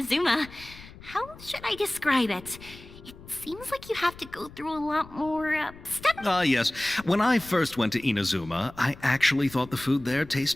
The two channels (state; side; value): noise; left; rumble, 19 dB below the sound